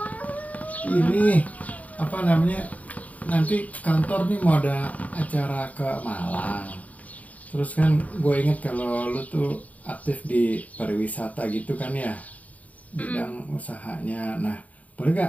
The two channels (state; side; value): late; right; 0.071 ms